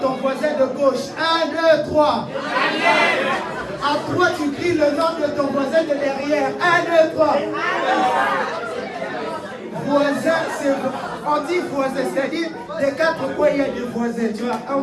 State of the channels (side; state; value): both; identical; correlation 1.00